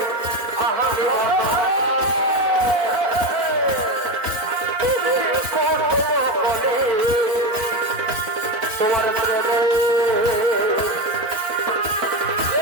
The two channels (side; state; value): left; late; 4.1 ms